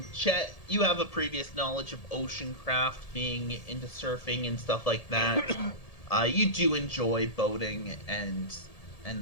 Chet, you have a previous knowledge of ocean craft, being into surfing and stuff like that. You do enjoy boating and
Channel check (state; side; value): late; right; 1.7 ms